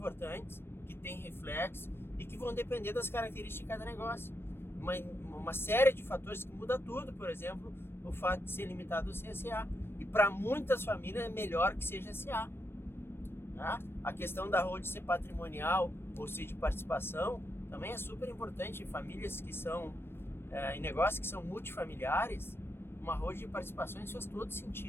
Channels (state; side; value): late; right; 0.11 ms